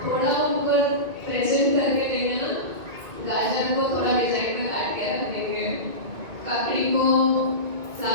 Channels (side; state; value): left; late; 2.2 ms